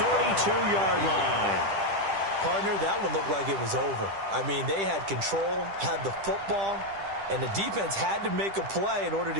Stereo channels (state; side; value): late; left; 10 ms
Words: 32-yard line. Partner, that one looked like it was over. I mean, they had control, had the football, and the defense had to make a play in order